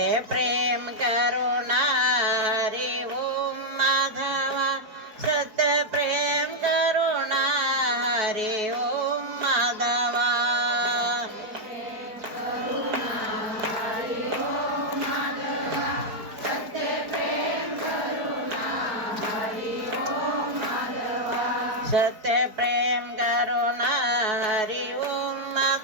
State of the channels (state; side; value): late; left; 4.4 ms